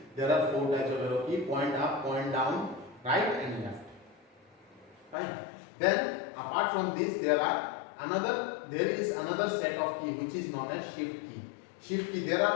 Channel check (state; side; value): drops out; right; at 5.2 s